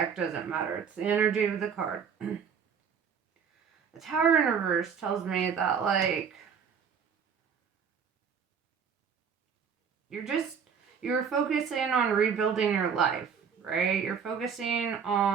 doesn't matter. It's the energy of the card. The Tower in reverse tells me that, like, you're focusing on rebuilding your life, right? You're focusing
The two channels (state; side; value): quieter; left; 6.8 dB